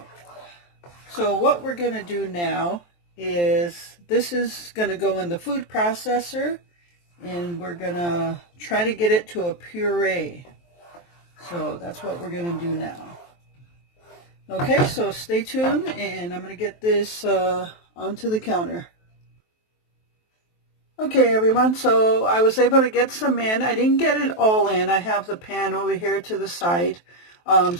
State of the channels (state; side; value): late; right; 23 ms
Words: so what we're going to do now is this is going to go in the food processor, and we're going to try to get it to a puree. So that's what we're going to do now. Okay, so stay tuned, and I'm going to get this onto the counter. Okay, everyone, so I was able to get some in. I didn't get it all in. I have the pan over here to the side,